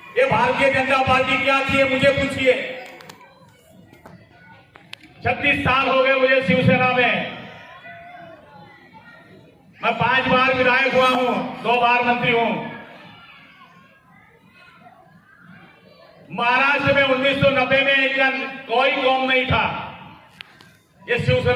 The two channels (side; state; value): both; identical; correlation 1.00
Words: ये भारतीय जनता पार्टी क्या थी मुझे पूछिए। 36 साल हो गए मुझे शिवसेना में। मैं 5 बार विधायक हुआ हूं, 2 बार मंत्री हूं। महाराष्ट्र में 1990 में कोई कौम नहीं था। ये